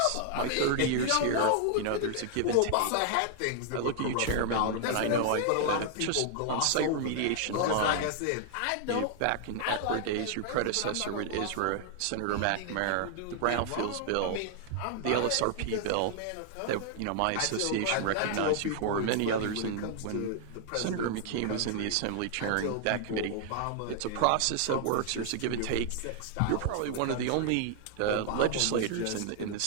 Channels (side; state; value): both; different; correlation 0.00